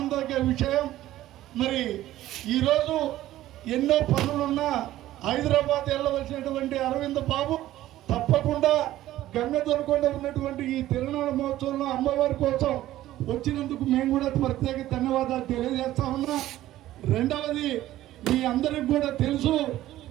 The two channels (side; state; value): left; quieter; 14.5 dB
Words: విషయం. మరి ఈరోజు ఎన్నో పనులున్నా హైదరాబాద్ వెళ్ళవలసినటువంటి అరవింద బాబు తప్పకుండా గంగదొరకొండ ఉన్నటువంటి ఈ తిరునాళ్ళ మహోత్సవంలో అమ్మవారి కోసం వచ్చినందుకు మేము కూడా ప్రత్యేక ధన్యవాదాలు తెలియజేస్తా ఉన్నా. రెండవది, మీ అందరికి కూడా తెలుసు,